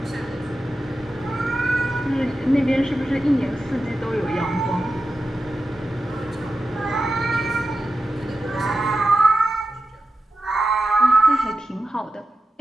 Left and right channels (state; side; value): normal; both; correlation 0.91